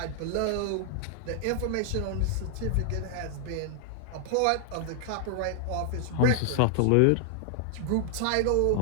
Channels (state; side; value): different; both; correlation 0.00